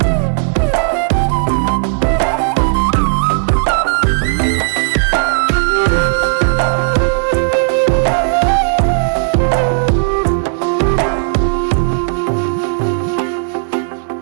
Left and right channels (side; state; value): left; silent; 58 dB below the other